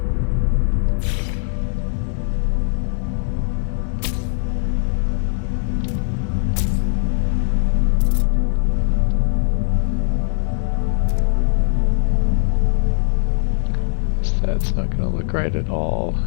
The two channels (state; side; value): silent; right; 60 dB below the other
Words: That's not going to look right at all.